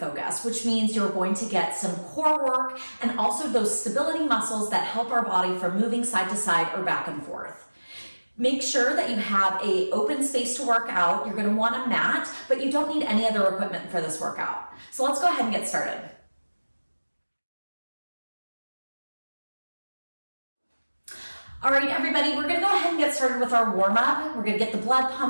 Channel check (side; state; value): both; inverted; correlation -1.00